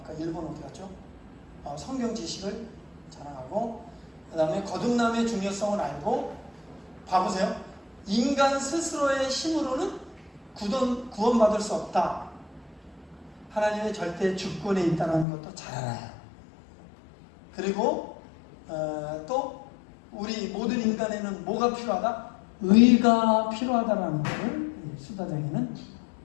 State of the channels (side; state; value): right; drops out; at 15.2 s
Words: 1번 어디 갔죠? 성경 지식을 자랑하고, 그 다음에 거듭남의 중요성을 알고, 봐보세요. 인간 스스로의 힘으로는 구원받을 수 없다. 하나님의 절대 주권에 있다는 것도 잘 알아요. 그리고 또 우리 모든 인간에는 뭐가 필요하다? 의가 필요하다라는 것을 수다장이는